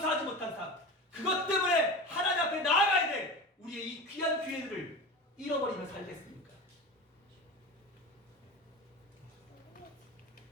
못한 삶, 그것 때문에 하나님 앞에 나아가야 될 우리의 이 귀한 기회들을 잃어버리면 살겠습니까?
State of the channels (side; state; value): both; normal; correlation 0.29